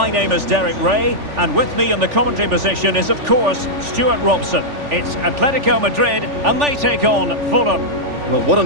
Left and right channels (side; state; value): left; late; 3.4 ms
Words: name is Derek Ray, and with me in the commentary position is, of course, Stuart Robson. It's Atlético Madrid, and they take on Fulham. Well, what a